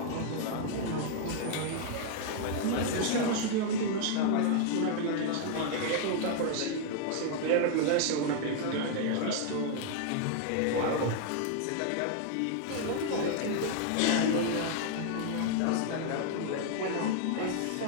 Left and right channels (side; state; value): both; different; correlation 0.00